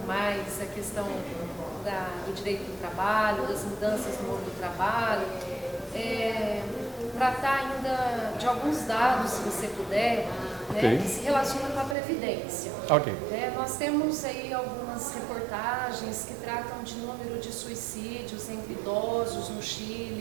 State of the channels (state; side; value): drops out; left; at 12.0 s